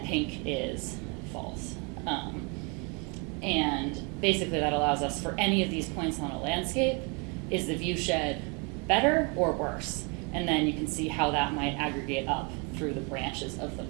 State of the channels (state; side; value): quieter; left; 33.0 dB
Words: pink is false. And basically that allows us, for any of these points on a landscape, is the view shed better or worse? And then you can see how that might aggregate up through the branches of the